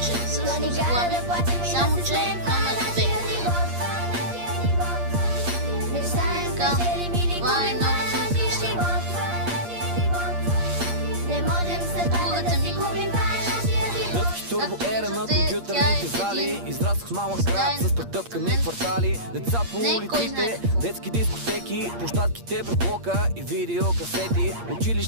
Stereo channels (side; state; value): left; late; 8.6 ms